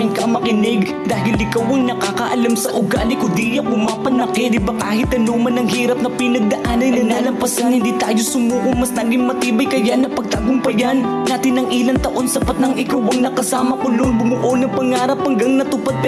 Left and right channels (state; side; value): identical; both; correlation 1.00